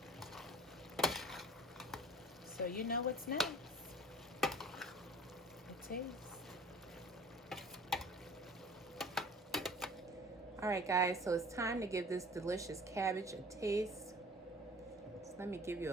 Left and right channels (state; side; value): normal; both; correlation 0.47